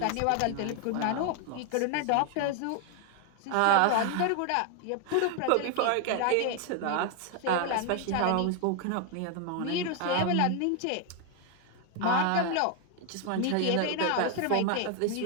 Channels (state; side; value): different; both; correlation 0.01